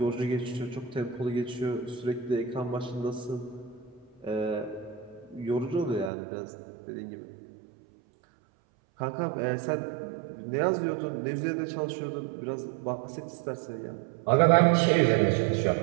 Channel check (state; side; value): drops out; left; at 6.1 s